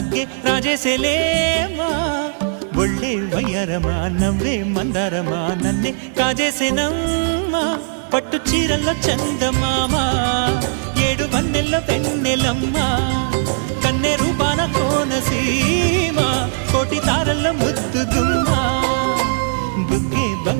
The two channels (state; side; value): silent; left; 55 dB below the other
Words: ರಾಜೇಸೆಲೇಮಾ ಒಳ್ಳೆ ವಯ್ಯಾರಮ ನವ್ವే మందారమ నన్నే కాజేసేనమ్మ పట్టు చీరల్లో చందమామ ఏడు వన్నెల్లో వెన్నెలమ్మ కన్నె రూపాన కోనసీమ కోటి తారల్లో ముద్దుగుమ్మ బుగ్గే